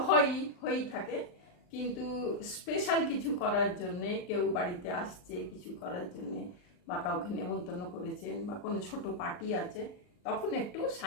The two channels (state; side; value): late; right; 39 ms